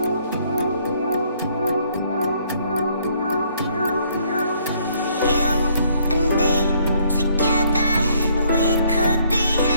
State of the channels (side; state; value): both; inverted; correlation -0.66